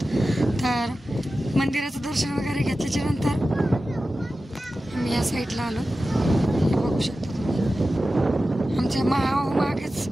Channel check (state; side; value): normal; both; correlation 0.94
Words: तर मंदिराचं दर्शन वगैरे घेतल्याच्या नंतर आम्ही या साईडला आलो. हे बघू शकता तुम्ही, आमच्या मागेच